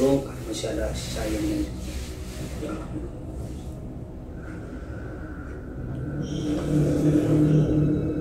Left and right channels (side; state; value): both; identical; correlation 1.00